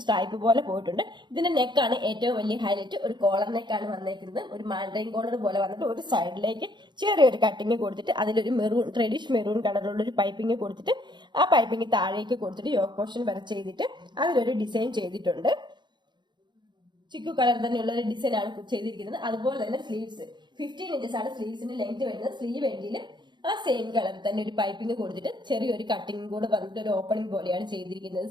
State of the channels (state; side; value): late; left; 0.22 ms